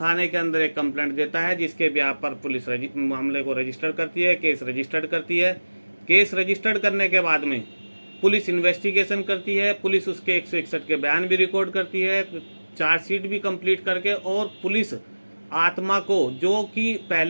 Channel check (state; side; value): inverted; both; correlation -1.00